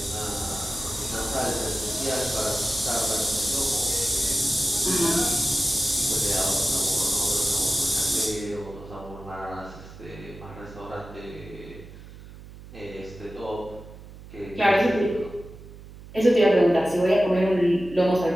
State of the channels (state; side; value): noise; right; hum, 17 dB below the sound